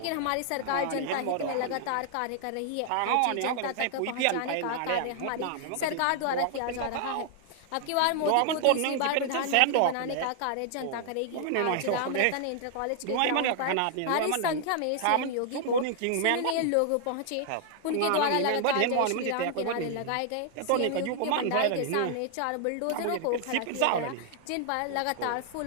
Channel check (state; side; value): different; both; correlation 0.00